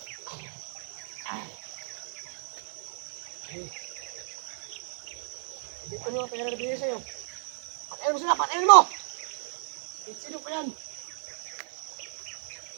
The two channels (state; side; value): silent; left; digital silence